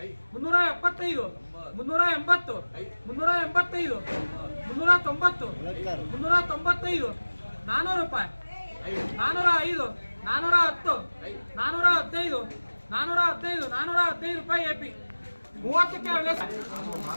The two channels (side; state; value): both; inverted; correlation -1.00